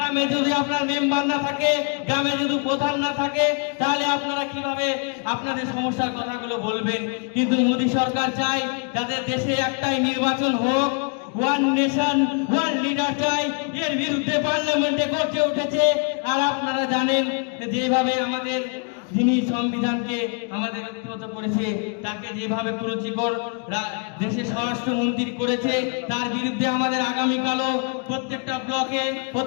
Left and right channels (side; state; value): right; quieter; 38.5 dB